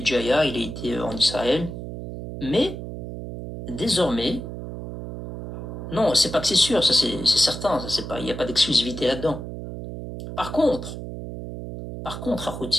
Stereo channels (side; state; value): right; noise; hum, 8 dB below the sound